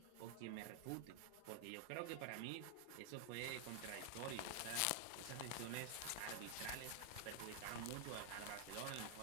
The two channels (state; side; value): different; both; correlation 0.00